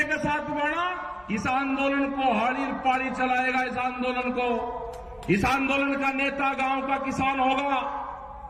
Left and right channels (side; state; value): both; identical; correlation 1.00